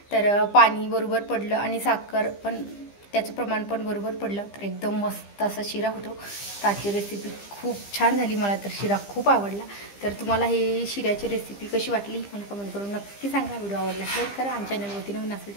तर पाणी बरोबर पडलं आणि साखर पण त्याचं प्रमाण पण बरोबर पडलं तर एकदम मस्त असा शिरा होतो. आजची रेसिपी खूप छान झाली. मला तर शिरा खूप आवडला. तर तुम्हाला हे शिऱ्याची रेसिपी कशी वाटली मला कमेंट करून नक्की सांगा. व्हिडिओ आवडल्यास लाईक करा आणि चॅनलवरती नवीन असेल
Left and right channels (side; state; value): right; late; 15 ms